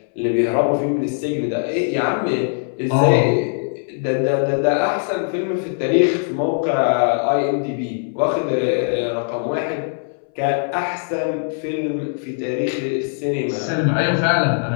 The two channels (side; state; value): right; silent; 64 dB below the other